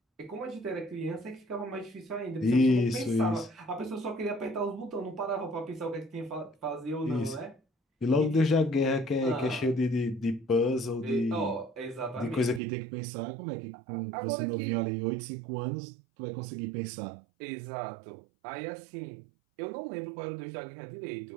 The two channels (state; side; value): drops out; left; at 12.6 s